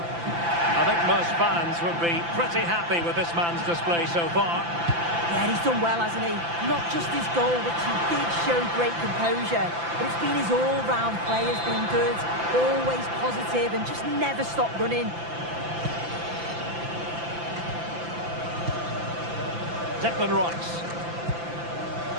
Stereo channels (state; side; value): late; left; 5.9 ms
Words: I think most fans would be pretty happy with this man's display so far. Yeah, he's done well, hasn't he? Not just his goal, which he did show great composure, but it's been his all-round play has been good, always positive and just never stopped running. Declan Rice.